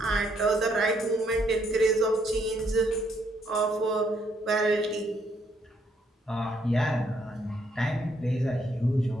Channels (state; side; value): normal; both; correlation 0.71